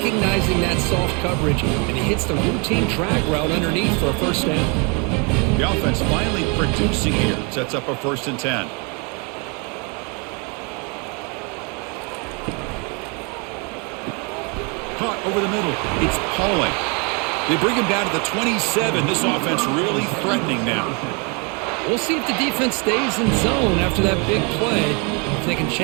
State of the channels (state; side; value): quieter; left; 33.0 dB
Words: that soft coverage, and he hits the routine drag route underneath for a first down. The offense finally producing here. Sets up a 1st and 10. Caught over the middle. It's Pauling. They bring him down to the 27. This offense really threatening now. We'll see if the defense stays in zone after that big play. If they can